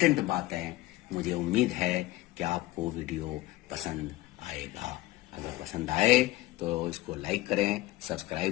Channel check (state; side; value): quieter; right; 17.6 dB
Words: बातें। मुझे उम्मीद है कि आपको वीडियो पसंद आएगा। अगर पसंद आए तो इसको लाइक करें,